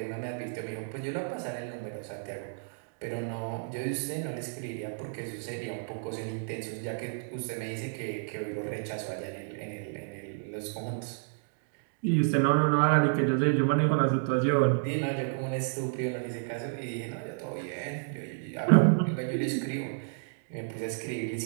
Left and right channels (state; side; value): silent; left; digital silence